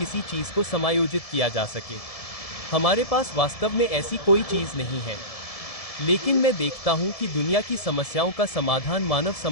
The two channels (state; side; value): late; right; 1.7 ms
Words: चीज को समायोजित किया जा सके। हमारे पास वास्तव में ऐसी कोई चीज नहीं है। लेकिन मैं देखता हूं कि दुनिया की समस्याओं का समाधान मानव